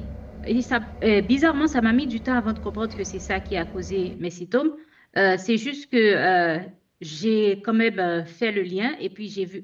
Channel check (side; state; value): both; identical; correlation 1.00